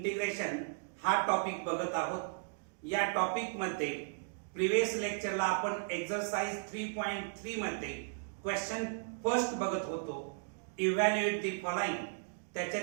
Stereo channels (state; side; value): silent; left; digital silence